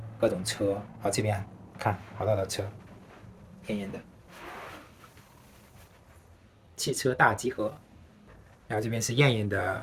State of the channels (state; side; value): identical; both; correlation 1.00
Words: 各种车。好，这边看好多的车，艳艳的汽车大集合。然后这边是艳艳